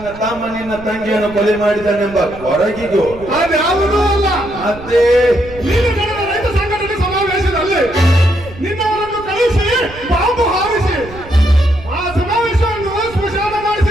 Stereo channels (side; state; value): right; noise; rumble, 17 dB below the sound